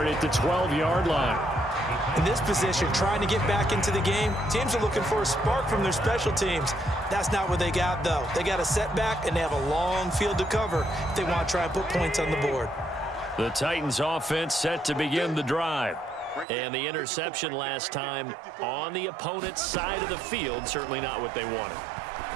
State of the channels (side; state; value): left; drops out; at 16.4 s